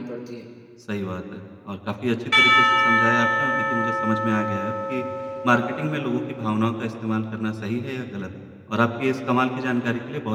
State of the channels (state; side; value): identical; both; correlation 1.00